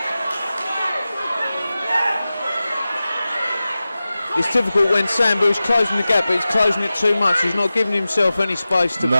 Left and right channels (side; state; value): both; inverted; correlation -0.95